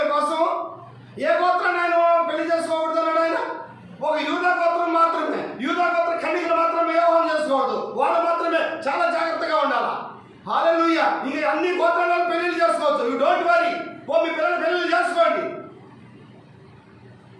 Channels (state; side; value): identical; both; correlation 1.00